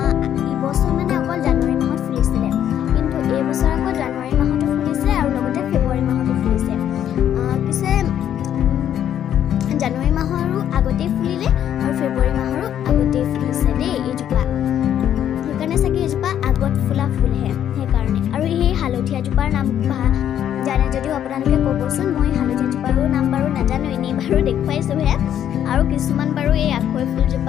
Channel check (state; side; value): quieter; right; 10.2 dB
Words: ইবছৰ মানে অকল জানুৱাৰী মাহত ফুলিছিলে, কিন্তু এইবছৰ আকৌ জানুৱাৰী মাহতো ফুলিছে আৰু লগতে ফেব্ৰুৱাৰী মাহতো ফুলিছে। পিছে জানুৱাৰী মাহৰো আগতেই ফুলিলে আৰু ফেব্ৰুৱাৰী মাহৰো আগতেই ফুলিছে দেই এইজোপা। সেইকাৰণে চাগে এইজোপা আগত ফুলা ফুলহে, সেইকাৰণে। আৰু সেই হালধীয়াজোপাৰ নাম জানে যদিও আপোনালোকে ক'বচোন। মই হালধীয়াজোপাৰো নাম বাৰু নাজানো, এনেই বাৰু দেখুৱাইছোঁহে। আৰু কিছুমান বাৰু এই আখৈ